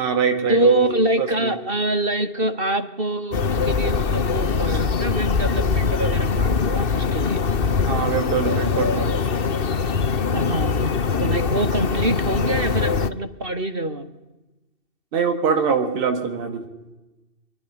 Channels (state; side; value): late; left; 2.7 ms